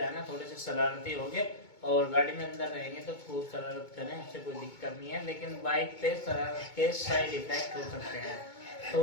है ना थोड़े से शरारती हो गए और गाड़ी में अंदर रहेंगे तो खूब शरारत करें, उससे कोई दिक्कत नहीं है। लेकिन बाइक पे शरारत के साइड इफेक्ट हो सकते हैं, तो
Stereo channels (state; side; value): late; right; 2.2 ms